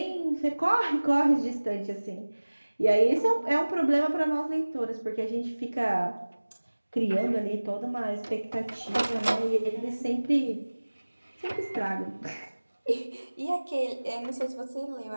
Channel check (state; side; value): inverted; both; correlation -1.00